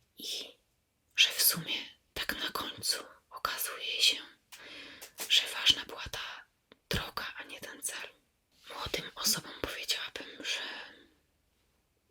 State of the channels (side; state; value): both; identical; correlation 1.00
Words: i że w sumie tak na końcu okazuje się, że ważna była ta droga, a nie ten cel. Młodym osobom powiedziałabym, że